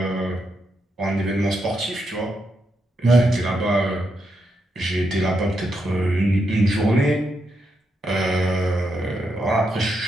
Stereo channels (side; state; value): both; normal; correlation 0.82